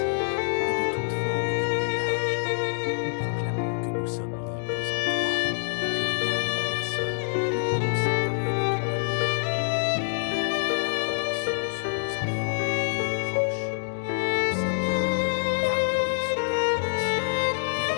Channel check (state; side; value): silent; right; digital silence